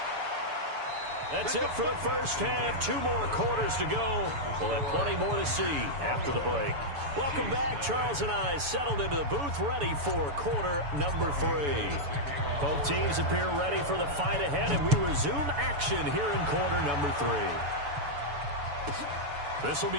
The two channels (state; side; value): late; left; 7.0 ms